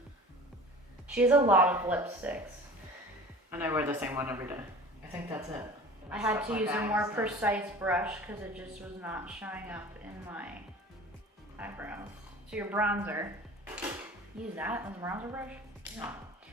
She has a lot of lipsticks. And I wear the same one every day. I think that's it. I had Stuff to like use a that, more so. precise brush because it just was not showing up in my eyebrows. So your bronzer, use that as a bronzer brush? Yeah.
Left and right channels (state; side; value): normal; both; correlation 0.41